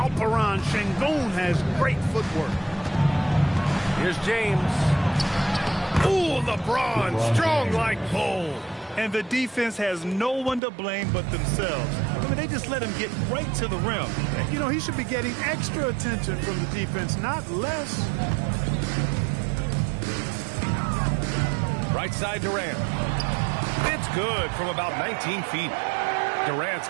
Şengün has great footwork. Here's James. Ooh, LeBron, strong like bull. And the defense has no one to blame but themselves. I mean, they just let him get right to the rim. You know, he should be getting extra attention from the defense, not less. Right side Durant. It's good from about 19 feet. Durant's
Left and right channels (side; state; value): left; drops out; at 10.6 s